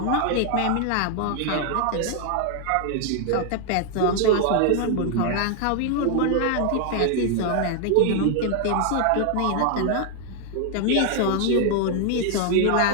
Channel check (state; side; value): different; both; correlation 0.00